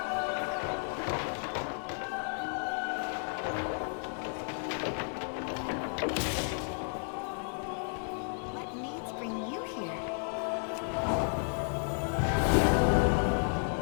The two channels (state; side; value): silent; right; 56 dB below the other